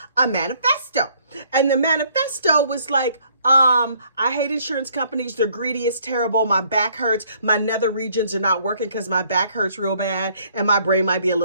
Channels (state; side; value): inverted; both; correlation -0.63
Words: a manifesto. And the manifesto was like, I hate insurance companies. They're greedy. It's terrible. My back hurts. My nether regions are not working because my back hurts real bad and my brain might be a